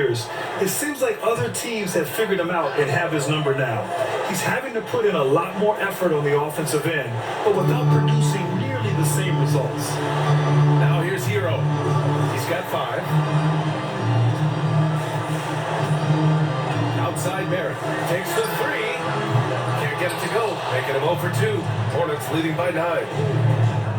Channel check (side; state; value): both; identical; correlation 1.00